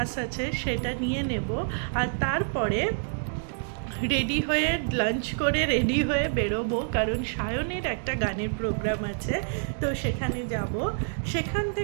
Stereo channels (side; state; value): left; silent; digital silence